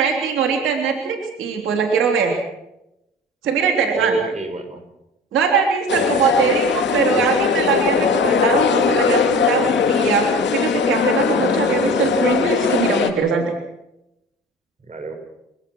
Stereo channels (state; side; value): normal; both; correlation 0.36